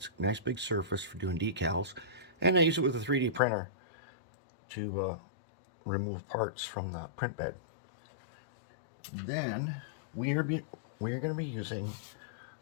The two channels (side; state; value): right; drops out; at 3.4 s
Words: a nice big surface for doing decals. And I use it with a 3D printer to remove parts from the print bed. Then we are going to be using